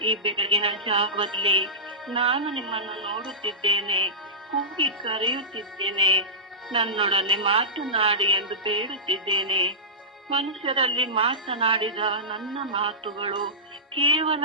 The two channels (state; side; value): normal; both; correlation -0.17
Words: ಈ ಬೆಳಗಿನ ಜಾವದಲ್ಲಿ ನಾನು ನಿಮ್ಮನ್ನು ನೋಡುತ್ತಿದ್ದೇನೆ, ಕೂಗಿ ಕರೆಯುತ್ತಿದ್ದೇನೆ. ನನ್ನೊಡನೆ ಮಾತನಾಡಿ ಎಂದು ಬೇಡುತ್ತಿದ್ದೇನೆ. ಮನುಷ್ಯರಲ್ಲಿ ಮಾತನಾಡಿದ ನನ್ನ ಮಾತುಗಳು ಕೇವಲ